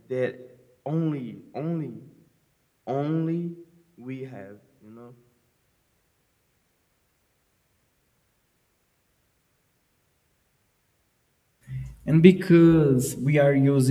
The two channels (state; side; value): identical; both; correlation 1.00